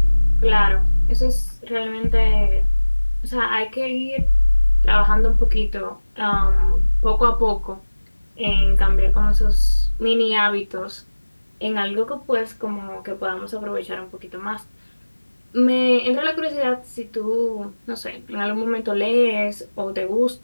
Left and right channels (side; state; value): both; inverted; correlation -1.00